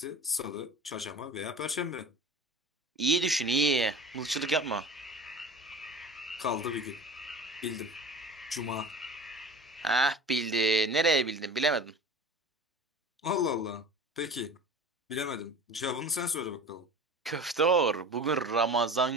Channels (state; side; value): normal; both; correlation 0.37